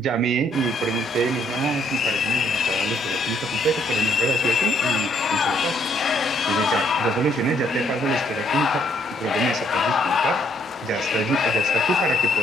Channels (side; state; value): both; normal; correlation 0.69